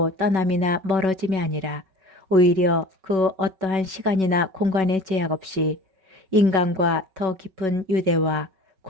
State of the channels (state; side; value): late; left; 5.3 ms